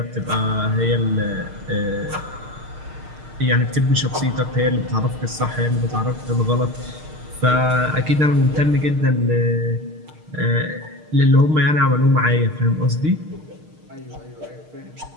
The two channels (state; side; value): late; left; 6.5 ms